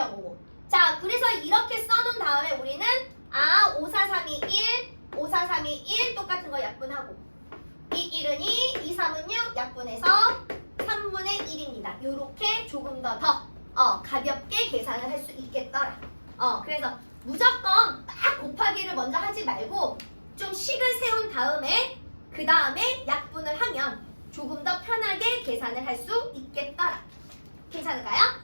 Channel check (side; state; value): both; inverted; correlation -1.00